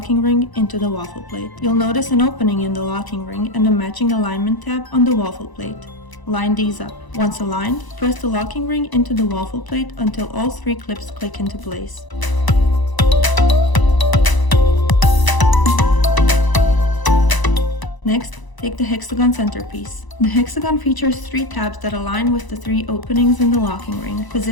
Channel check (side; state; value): right; late; 1.0 ms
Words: ring into the waffle plate. You'll notice an opening in the locking ring and a matching alignment tab on the waffle plate. Line these up. Once aligned, press the locking ring into the waffle plate until all three clips click into place. Next, take the hexagon centerpiece. The hexagon features three tabs that align with the three openings in the locking ring.